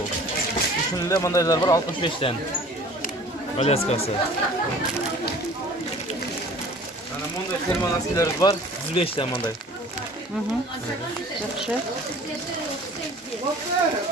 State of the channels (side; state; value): both; normal; correlation 0.47